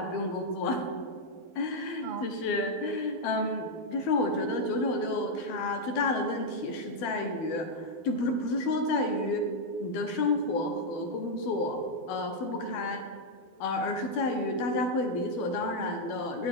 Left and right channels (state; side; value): late; right; 12 ms